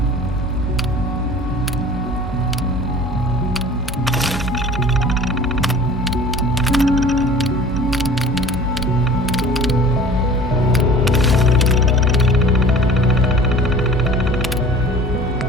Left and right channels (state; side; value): normal; both; correlation 0.44